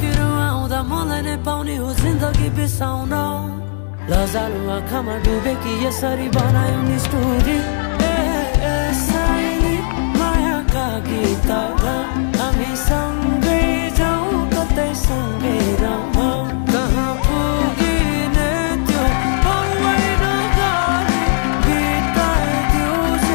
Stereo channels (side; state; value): right; silent; digital silence